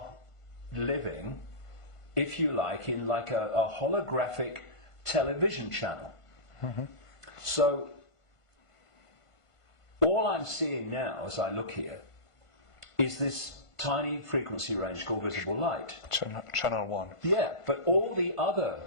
living, if you like, in like a holographic television channel. So, all I'm seeing now as I look here is this tiny frequency range called visible light. Channel 1. Yeah, but all the other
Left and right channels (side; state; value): right; late; 1.5 ms